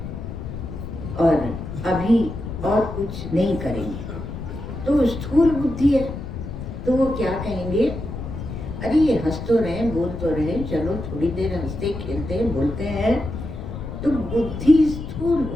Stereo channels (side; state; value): left; noise; rumble, 7 dB below the sound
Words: और अभी और कुछ नहीं करेंगे। तो स्थूल बुद्धि है, तो वो क्या कहेंगे, अरे ये हंस तो रहे, बोल तो रहे, चलो थोड़ी देर हंसते खेलते हैं, बोलते हैं, तो बुद्धि स्थूल